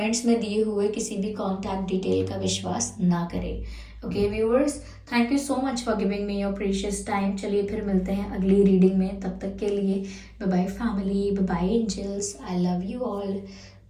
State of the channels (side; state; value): both; identical; correlation 1.00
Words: में दिए हुए किसी भी कॉन्टैक्ट डिटेल का विश्वास ना करें। Okay viewers, thank you so much for giving me your precious time. चलिए फिर मिलते हैं अगली रीडिंग में, तब तक के लिए bye bye family, bye bye angels, I love you all,